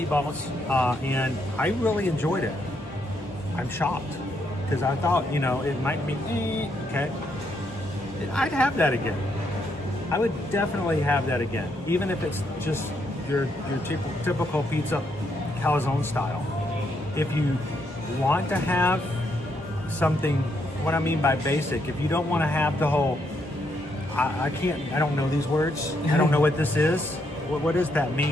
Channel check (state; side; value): normal; both; correlation 0.76